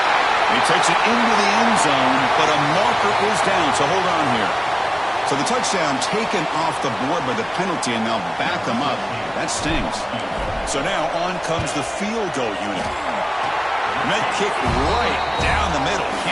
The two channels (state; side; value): identical; both; correlation 1.00